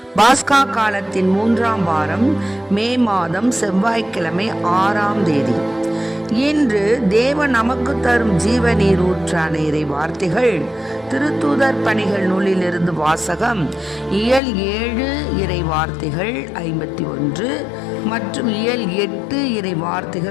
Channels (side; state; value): right; drops out; at 14.4 s